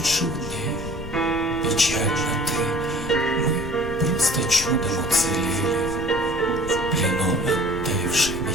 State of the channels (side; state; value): left; noise; rumble, 9 dB below the sound